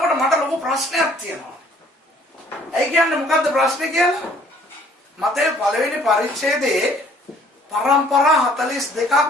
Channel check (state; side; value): normal; both; correlation 0.58